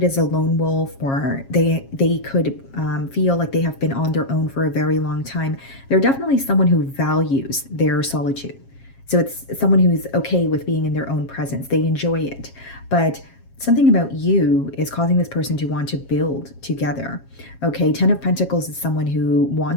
as a lone wolf, or they could feel like they have been on their own for a very long time. They're definitely someone who values their solitude. So it's someone who's okay with being in their own presence. They enjoy it. But something about you is causing this person to want to build together. Okay, Ten of Pentacles is someone who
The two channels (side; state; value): right; late; 7.4 ms